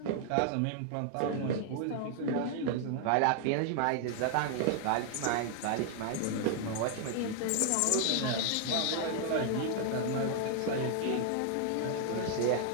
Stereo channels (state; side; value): different; both; correlation 0.00